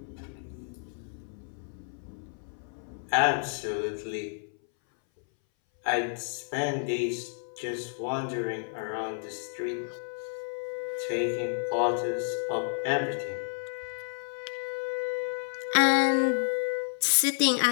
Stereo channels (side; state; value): right; silent; 57 dB below the other